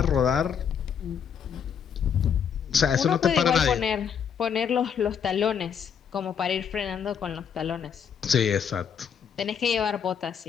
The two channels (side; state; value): right; quieter; 7.4 dB